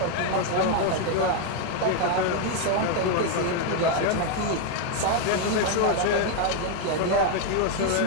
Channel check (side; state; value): both; different; correlation 0.01